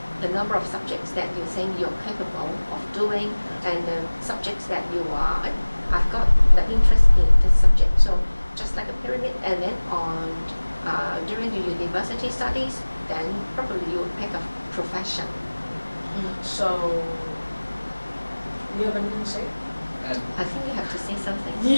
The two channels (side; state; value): both; inverted; correlation -1.00